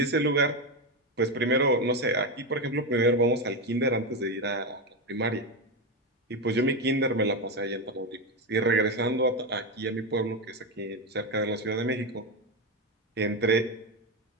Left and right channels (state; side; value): normal; both; correlation 0.12